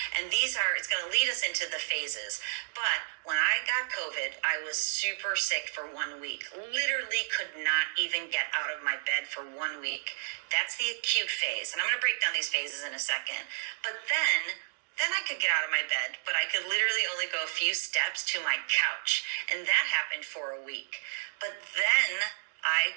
And it's going to lead us into the phases. But when I got COVID, I was super sick for 1 week. Literally could not even get out of my bed for 1 week. That's the acute phase. And I'm going to break down these phases in a second. But then I could get out of my bed, but I could literally only go a few steps to my couch. And that happened for a week. But then I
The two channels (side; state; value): left; silent; digital silence